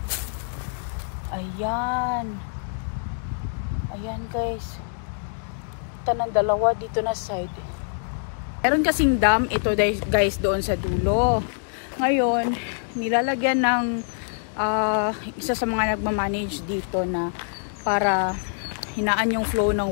Ayan. Ayan guys. Kita ng dalawa dito na side. Meron kasing dam ito guys doon sa dulo. Ngayon, nilalagyan ng isa sa mga nagmamanage dito na para hinaan yung flow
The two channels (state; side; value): silent; right; digital silence